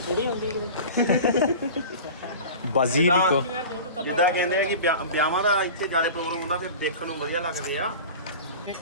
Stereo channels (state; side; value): inverted; both; correlation -0.36